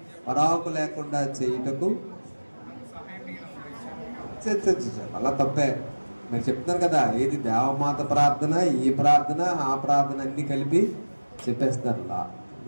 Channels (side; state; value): both; inverted; correlation -1.00